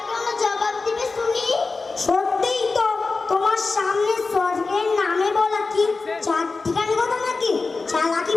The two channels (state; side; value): quieter; right; 4.0 dB